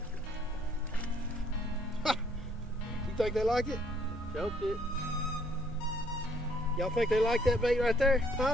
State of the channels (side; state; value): both; normal; correlation 0.65